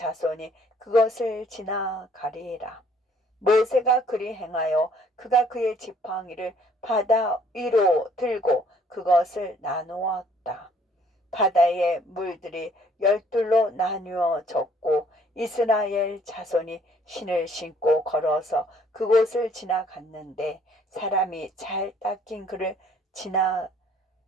그것을 지나가리라. 모세가 그리 행하여 그가 그의 지팡이를 바다 위로 들고 그것을 나누었다. 바다의 물들이 열둘로 나누어졌고 이스라엘 자손이 신을 신고 걸어서 그곳을 지나갔는데 사람이 잘 닦인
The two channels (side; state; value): both; normal; correlation 0.61